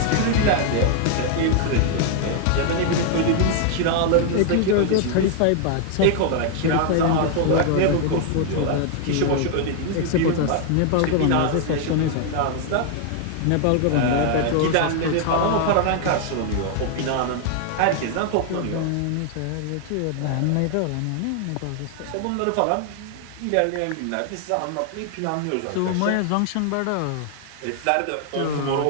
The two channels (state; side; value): different; both; correlation 0.00